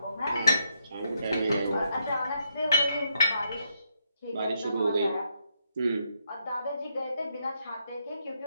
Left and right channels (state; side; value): inverted; both; correlation -0.79